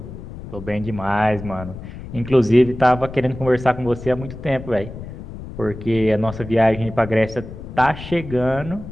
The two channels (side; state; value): left; noise; rumble, 12 dB below the sound